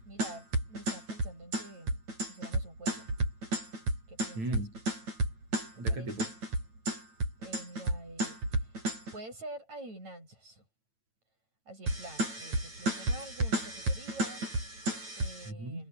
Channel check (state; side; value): late; left; 9.0 ms